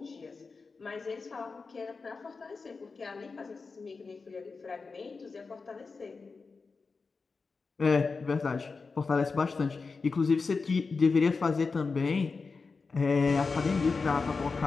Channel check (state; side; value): quieter; right; 4.5 dB